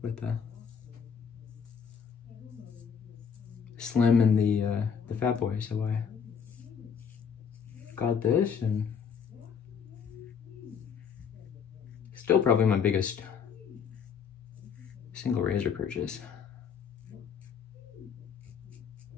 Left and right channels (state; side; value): quieter; right; 6.8 dB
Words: with the Slim and the Fat Boy, so I got this, and still probably my biggest single razor purchase.